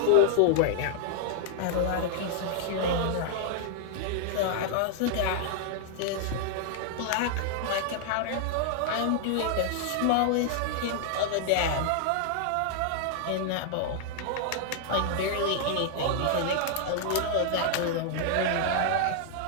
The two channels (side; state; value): both; different; correlation -0.01